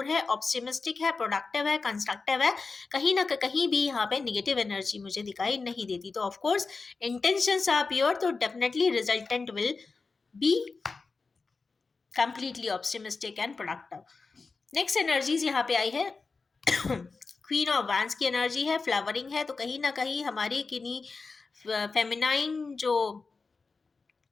है, ऑप्टिमिस्टिक है, प्रोडक्टिव है, कंस्ट्रक्टिव है। कहीं ना कहीं भी यहाँ पे निगेटिव एनर्जी मुझे दिखाई नहीं देती। तो of course intentions are pure, तो definitely resultant will be completely optimistic and productive. Next energies यहाँ पे आई है क्वीन ऑफ वैंस की एनर्जी है, फ्लावरिंग है। तो कहीं ना कहीं हमारी किन्हीं फेमिनाइन जो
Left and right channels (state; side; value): quieter; right; 4.3 dB